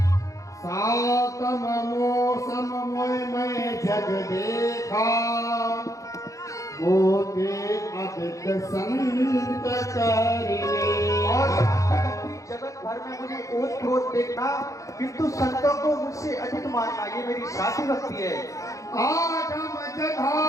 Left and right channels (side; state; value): right; late; 0.16 ms